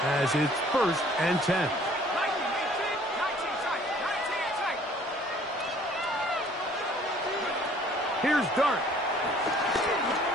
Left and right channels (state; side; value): noise; right; rumble, 29 dB below the sound